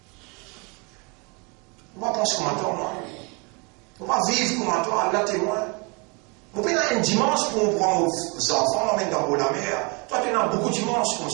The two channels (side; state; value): left; quieter; 31.2 dB